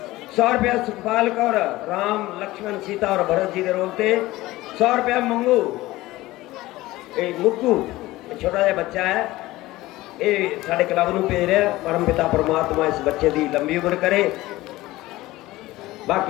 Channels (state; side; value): quieter; right; 18.1 dB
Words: 100 रुपया सुखपाल कौर राम लक्ष्मण सीता और भरत जी के रोल से। 100 रुपया मंगू मुक्कू छोटा जहा बच्चा है, ये साढ़े क्लब में भेज रहा। परम पिता परमात्मा इस बच्चे की लंबी उम्र करे।